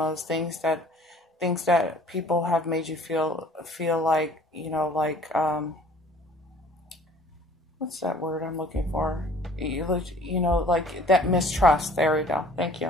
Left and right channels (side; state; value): both; normal; correlation 0.52